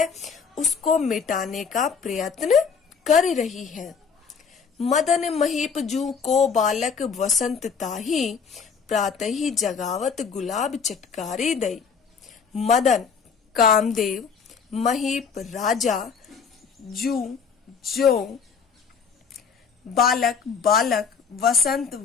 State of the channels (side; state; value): right; quieter; 6.0 dB